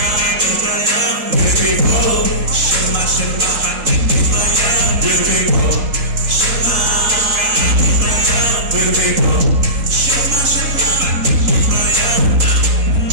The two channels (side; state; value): left; late; 3.8 ms